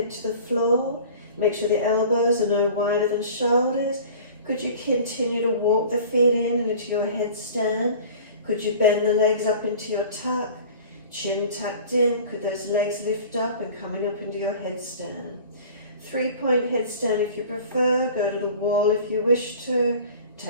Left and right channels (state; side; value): inverted; both; correlation -0.43